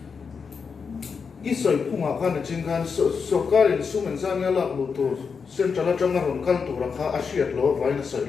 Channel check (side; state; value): right; quieter; 5.7 dB